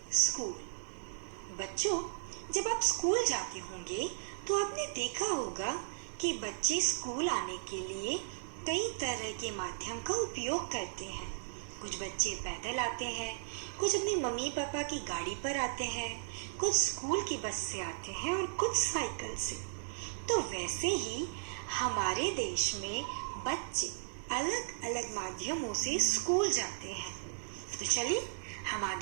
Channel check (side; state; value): left; silent; digital silence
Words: स्कूल। बच्चों, जब आप स्कूल जाते होंगे तो आपने देखा होगा कि बच्चे स्कूल आने के लिए कई तरह के माध्यम का उपयोग करते हैं। कुछ बच्चे पैदल आते हैं, कुछ अपनी मम्मी पापा की गाड़ी पर आते हैं, कुछ स्कूल की बस से आते हैं और कुछ साइकिल से। तो वैसे ही हमारे देश में बच्चे अलग अलग माध्यमों से स्कूल जाते हैं। तो चलिए हम